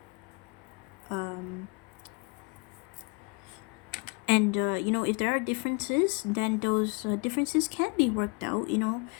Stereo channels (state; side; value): quieter; right; 32.3 dB